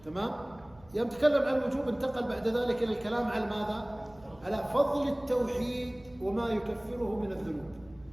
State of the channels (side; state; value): right; noise; hum, 25 dB below the sound